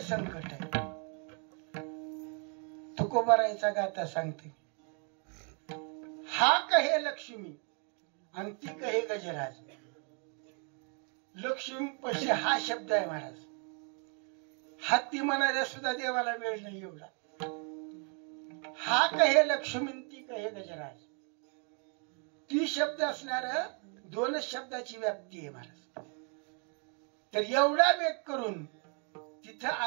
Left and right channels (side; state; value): left; quieter; 38.6 dB